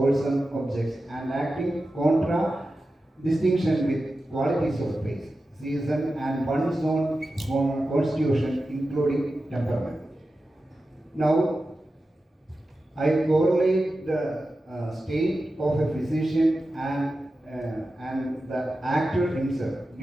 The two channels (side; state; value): both; normal; correlation 0.92